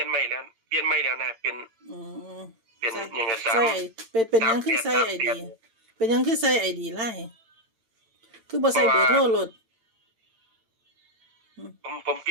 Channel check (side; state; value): left; late; 8.9 ms